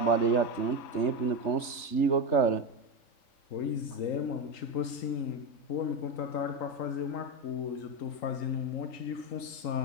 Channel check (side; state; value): right; late; 3.3 ms